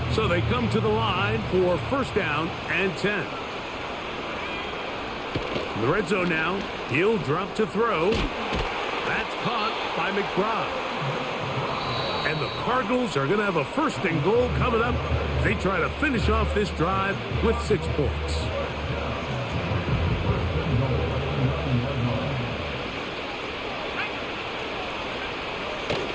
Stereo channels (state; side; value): identical; both; correlation 1.00